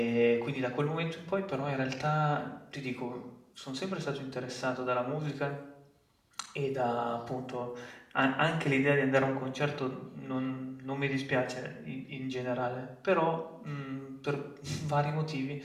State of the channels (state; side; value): identical; both; correlation 1.00